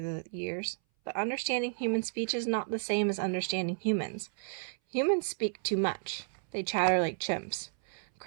the years, but understanding human speech is not the same as understanding humans. Humans speak too much. They chatter like chimps,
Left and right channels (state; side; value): silent; left; 56 dB below the other